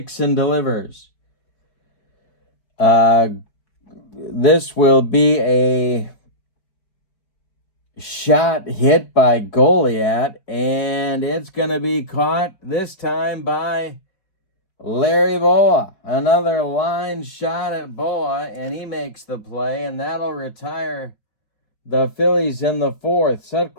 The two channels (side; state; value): right; late; 4.7 ms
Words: and delivers. This will be a shot hit by Goliat, and it's going to be caught this time by Larry Boa. Another line shot at Boa, and he makes the play, and that'll retire the Phillies in the 4th.